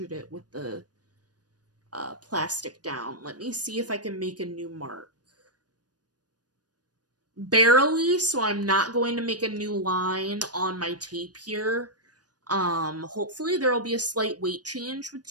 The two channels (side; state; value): left; late; 0.69 ms